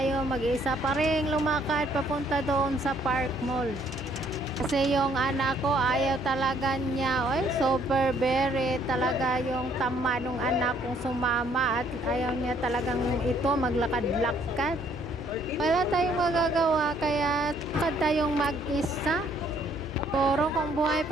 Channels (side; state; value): both; normal; correlation 0.65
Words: mag-isa pa rin lumakad papunta doon sa Park Mall. Kasi yung anak ko ayaw talaga niya, super very talaga yung tama nung anak kong sumama at ayaw niya talagang ito maglakad-lakad. Wala tayong magagawa kaya lakad tayong mag-isa. Pero kung buhay